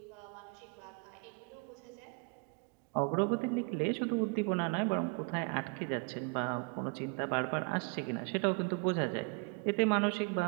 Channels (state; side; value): quieter; left; 33.6 dB